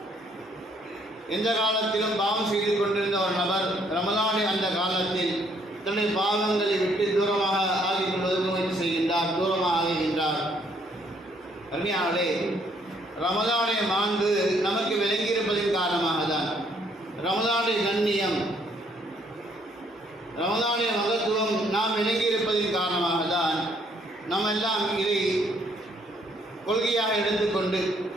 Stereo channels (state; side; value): normal; both; correlation 0.67